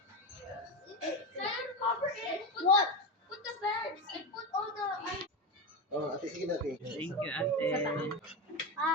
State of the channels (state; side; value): normal; both; correlation 0.18